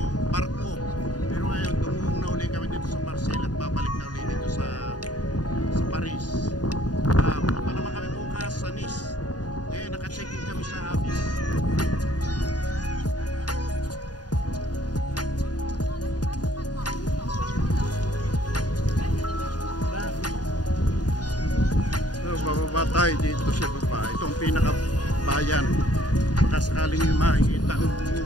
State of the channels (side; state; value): right; late; 0.69 ms